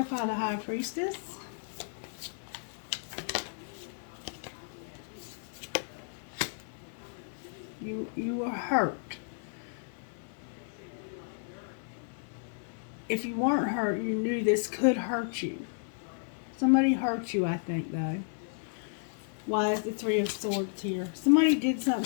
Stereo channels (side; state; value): right; silent; 56 dB below the other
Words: the High Priestess. You were hurt. If you weren't hurt, you knew this could hurt you. Somebody hurt you, I think, though. Why is the Three of Swords here? Somebody did